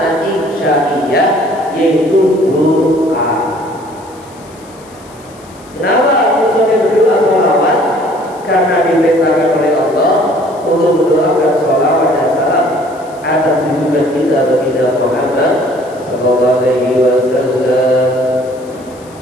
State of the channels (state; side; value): noise; left; hiss, 25 dB below the sound